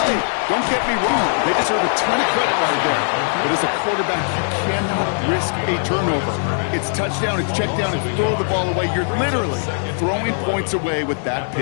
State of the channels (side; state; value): right; silent; digital silence